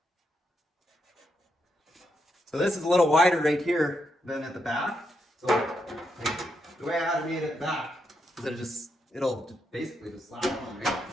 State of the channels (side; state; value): both; normal; correlation 0.82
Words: So this is a little wider right here than at the back. So the way I had it made at the back is it'll basically just slap on right